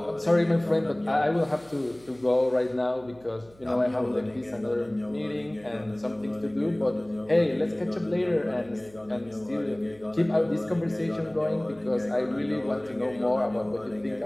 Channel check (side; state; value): right; noise; hum, 26 dB below the sound